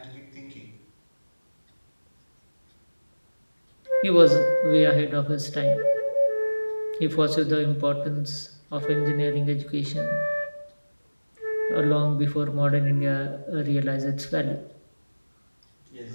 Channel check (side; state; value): both; inverted; correlation -1.00